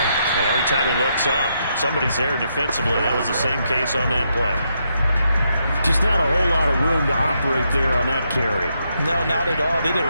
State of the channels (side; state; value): both; inverted; correlation -0.79